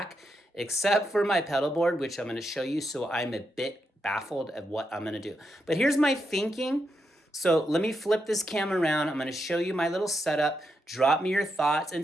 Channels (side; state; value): both; normal; correlation 0.83